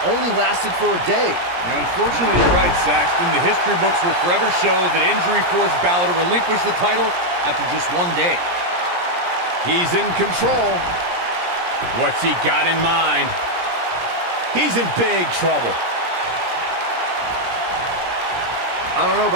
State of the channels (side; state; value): left; late; 17 ms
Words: only lasted for a day. Now, unfortunately, you're right, Saxton. The history books will forever show that injury forced Balor to relinquish the title after just one day. He's in control. What's he got in mind? He's in big trouble. I don't know